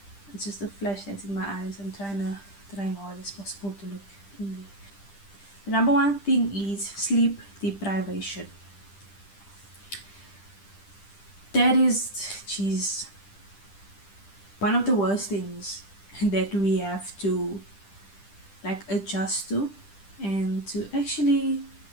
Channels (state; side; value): late; right; 10 ms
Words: It's just a flash that's in my eyes. I'm trying hard as possible to look in there. The number one thing is sleep deprivation. That is, geez, one of the worst things that we have to like adjust to and to actually